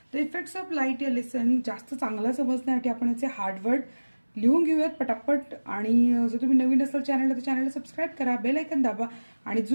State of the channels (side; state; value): both; inverted; correlation -1.00